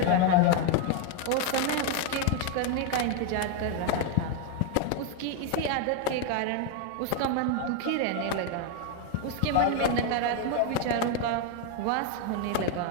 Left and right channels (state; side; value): different; both; correlation 0.01